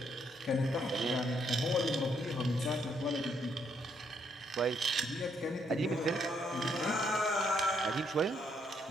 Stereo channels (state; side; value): normal; both; correlation 0.73